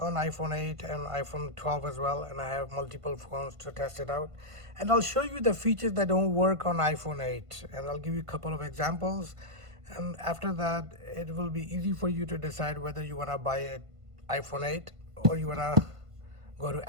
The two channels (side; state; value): left; late; 1.5 ms